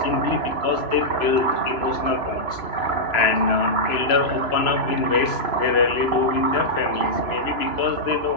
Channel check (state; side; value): late; right; 3.0 ms